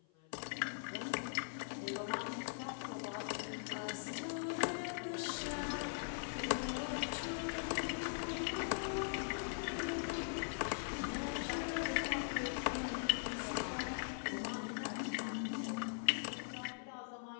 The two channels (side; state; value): right; silent; 50 dB below the other